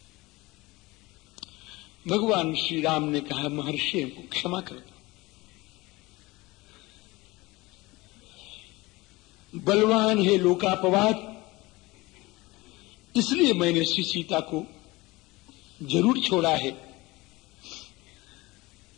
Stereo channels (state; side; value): quieter; right; 21.6 dB